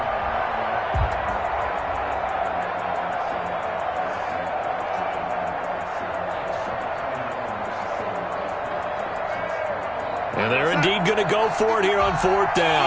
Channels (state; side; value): identical; both; correlation 1.00